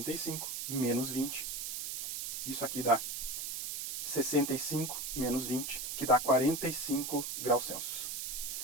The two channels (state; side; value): noise; right; hiss, 4 dB below the sound